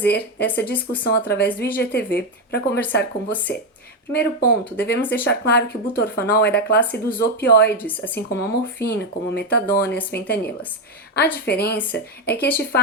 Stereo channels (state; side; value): normal; both; correlation 0.09